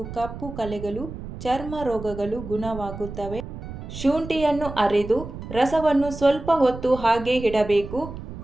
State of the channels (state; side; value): noise; right; rumble, 11 dB below the sound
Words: ಕಪ್ಪು ಕಲೆಗಳು, ಚರ್ಮ ರೋಗಗಳು ಗುಣವಾಗುತ್ತವೆ. ಶುಂಠಿಯನ್ನು ಅರೆದು ರಸವನ್ನು ಸ್ವಲ್ಪ ಹೊತ್ತು ಹಾಗೆ ಇಡಬೇಕು.